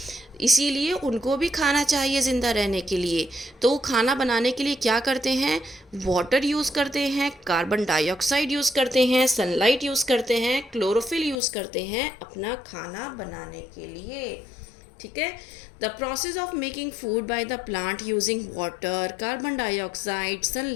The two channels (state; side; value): drops out; right; at 11.4 s